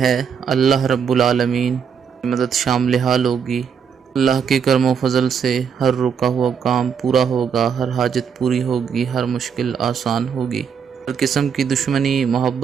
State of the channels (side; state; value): left; quieter; 7.0 dB